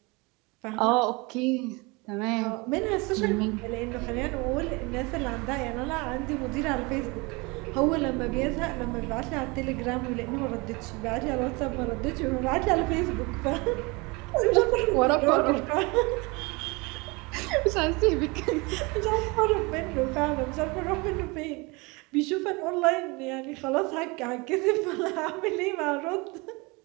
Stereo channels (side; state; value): left; quieter; 26.5 dB